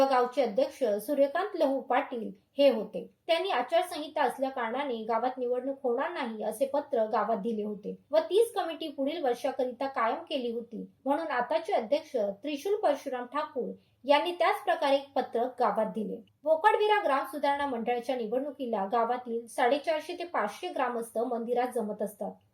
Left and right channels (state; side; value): identical; both; correlation 1.00